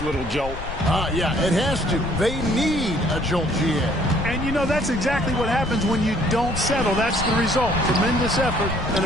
little jolt. Yeah, it has to. They need a jolt, GA. And, you know, that's exactly what happens when you don't settle. That's the result. Tremendous effort and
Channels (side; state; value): left; noise; rumble, 10 dB below the sound